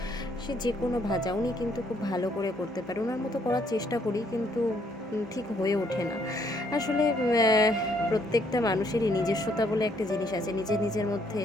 সে যে কোনো ভাজা উনি কিন্তু খুব ভালো করে করতে পারে। ওনার মতো করার চেষ্টা করি, কিন্তু ঠিক হয়ে ওঠে না আসলে। প্রত্যেকটা মানুষেরই নিজস্বতা বলে একটা জিনিস আছে, নিজের নিজের মধ্যে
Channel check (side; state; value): both; normal; correlation 0.68